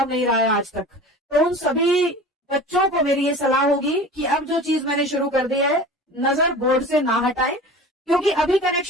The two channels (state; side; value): normal; both; correlation 0.37